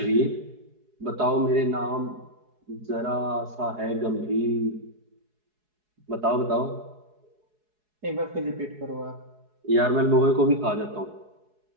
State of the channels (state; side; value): late; left; 4.7 ms